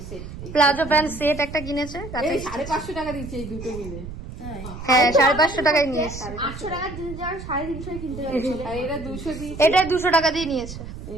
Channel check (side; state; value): right; noise; rumble, 11 dB below the sound